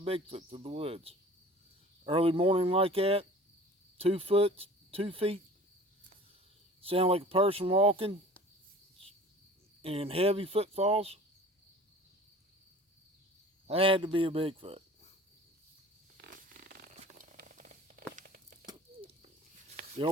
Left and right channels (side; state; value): both; normal; correlation 0.44